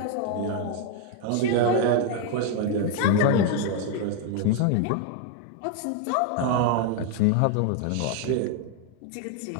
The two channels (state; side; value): different; both; correlation 0.01